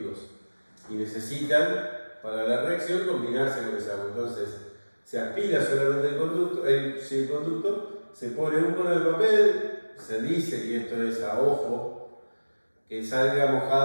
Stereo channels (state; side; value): inverted; both; correlation -1.00